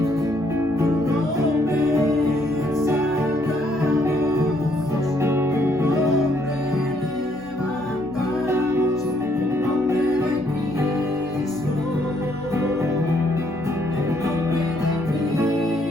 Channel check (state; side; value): normal; both; correlation 0.70